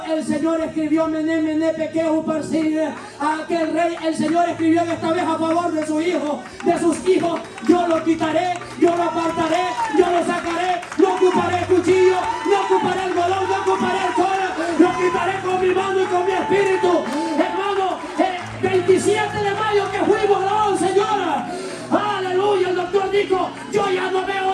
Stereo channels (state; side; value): identical; both; correlation 1.00